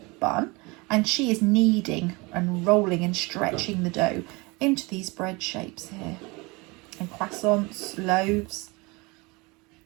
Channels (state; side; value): quieter; left; 25.8 dB